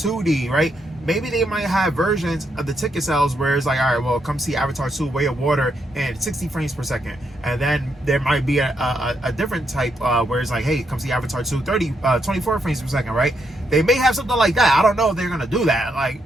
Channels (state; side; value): normal; both; correlation 0.79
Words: right? Maybe they might have versions of the ticket sales where it's like, all right, well, come see Avatar 2 Way of Water and 60 frames per second. And then there might be a different type where it's like, hey, come see Avatar 2 24 frames per second, right? They may have something like that. I don't know if they're going to do that. Like,